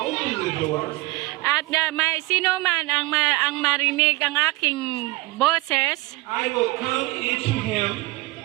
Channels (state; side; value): quieter; left; 21.5 dB